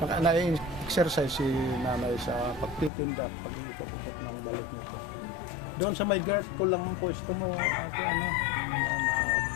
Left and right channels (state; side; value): drops out; right; at 2.9 s